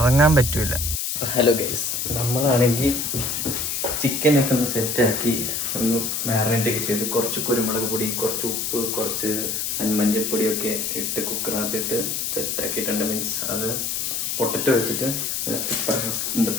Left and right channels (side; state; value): left; noise; hiss, 1 dB below the sound